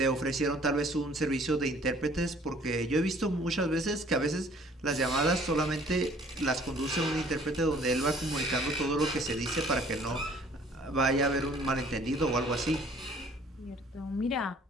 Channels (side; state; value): both; normal; correlation 0.56